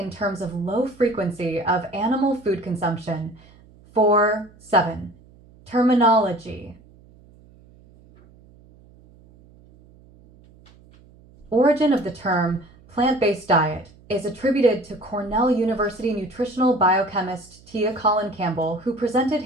terms of low frequency of animal food consumption. 4, 7. Terminology. Origin of the term plant-based diet is attributed to Cornell University nutritional biochemist Tia Colin Campbell, who presented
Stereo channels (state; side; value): noise; right; hum, 26 dB below the sound